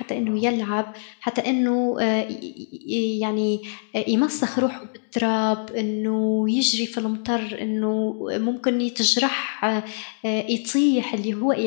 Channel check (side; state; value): right; silent; digital silence